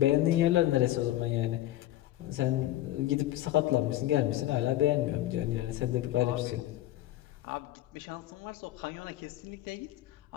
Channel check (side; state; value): right; quieter; 14.5 dB